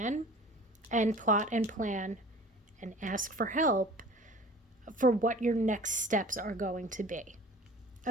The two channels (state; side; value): normal; both; correlation 0.44